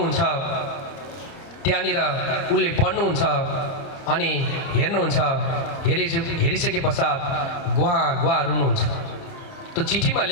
त्यहाँनिर उसले पढ्नुहुन्छ अनि हेर्नुहुन्छ। हेरिसके पश्चात गुहा रुनुहुन्छ। त्यो चिठीमा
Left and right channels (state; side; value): late; right; 30 ms